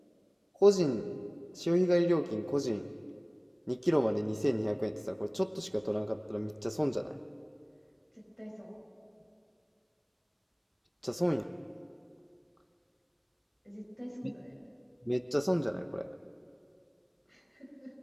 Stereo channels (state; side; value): identical; both; correlation 1.00